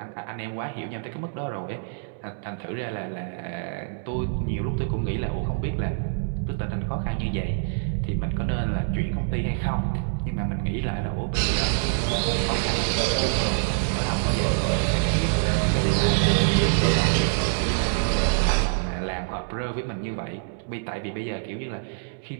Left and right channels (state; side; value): silent; left; digital silence